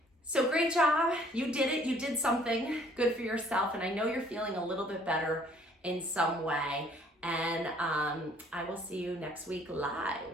So great job. You did it. You did something good for yourself. And I know you're feeling a little bit better in some way. And I will see you next week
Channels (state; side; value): normal; both; correlation 0.59